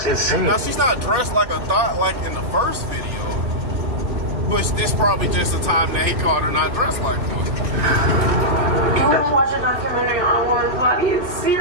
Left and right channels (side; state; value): left; late; 2.5 ms